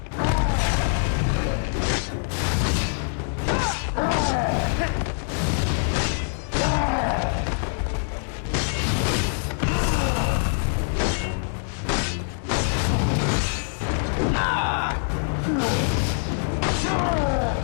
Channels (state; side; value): silent; right; digital silence